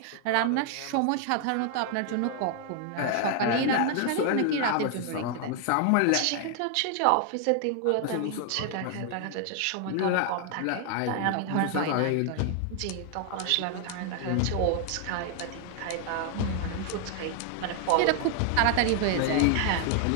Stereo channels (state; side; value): different; both; correlation 0.00